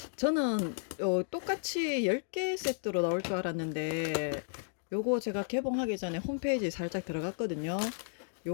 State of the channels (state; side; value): silent; right; digital silence